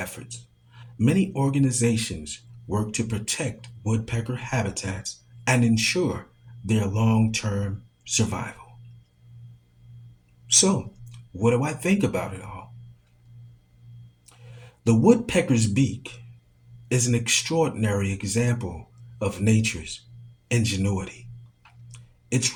Many organizations work to protect woodpecker habitats and ensure their long term survival. So, what do I think about it all? The woodpecker's beak is an extraordinary example of nature's ingenuity. Its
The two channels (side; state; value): both; identical; correlation 1.00